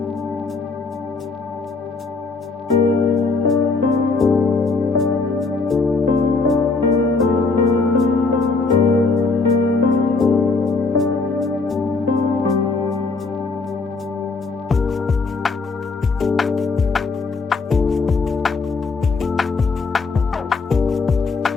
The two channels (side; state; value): right; quieter; 4.1 dB